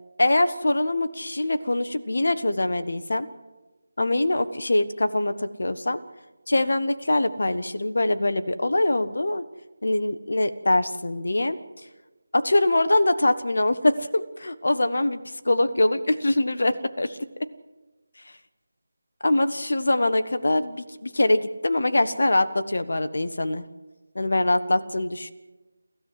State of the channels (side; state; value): both; inverted; correlation -0.98